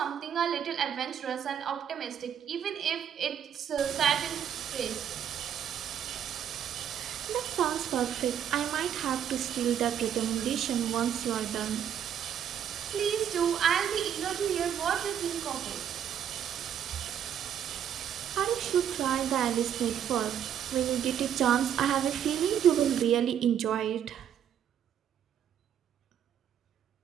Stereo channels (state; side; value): quieter; left; 9.2 dB